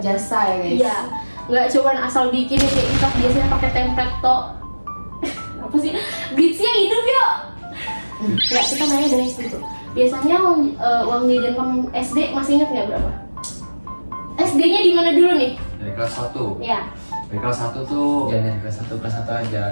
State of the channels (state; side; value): inverted; both; correlation -1.00